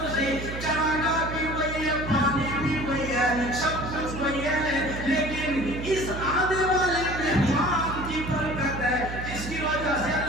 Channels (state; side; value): noise; right; hum, 7 dB below the sound